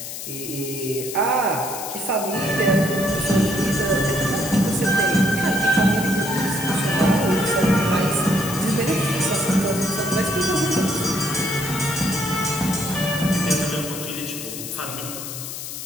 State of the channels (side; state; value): left; noise; hiss, 8 dB below the sound